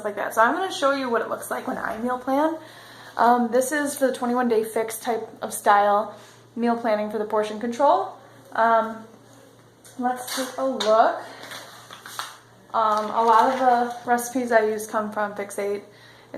like that. So I'm going to show you what it looks like when I meal plan. This is for the 21-day fix type of style meal planning for the portion control. Let's take a look. A lot of the recipes I use come from Fix8.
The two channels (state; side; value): identical; both; correlation 1.00